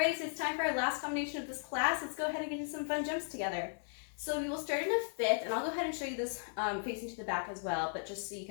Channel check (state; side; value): silent; right; digital silence